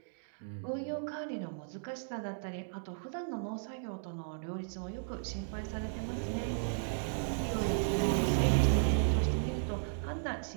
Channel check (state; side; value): silent; left; digital silence